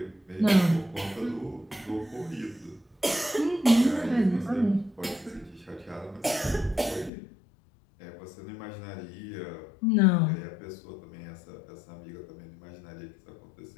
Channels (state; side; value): drops out; right; at 7.1 s